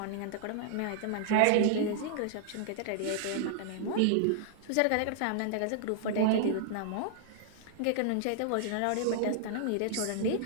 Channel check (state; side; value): different; both; correlation -0.01